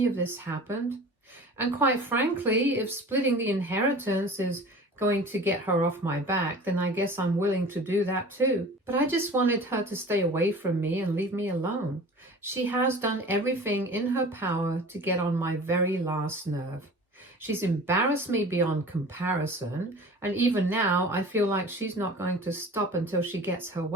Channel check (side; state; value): both; normal; correlation 0.41